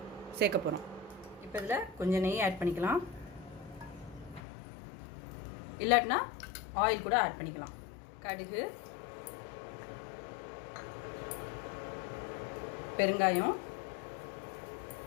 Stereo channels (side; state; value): right; drops out; at 4.4 s